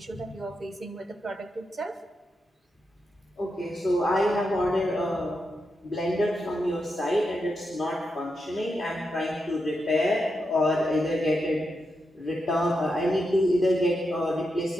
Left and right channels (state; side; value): normal; both; correlation 0.86